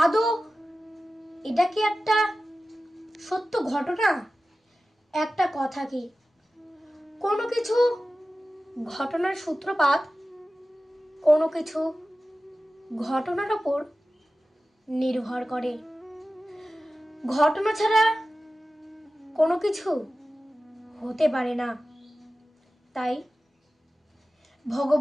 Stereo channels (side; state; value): both; normal; correlation 0.95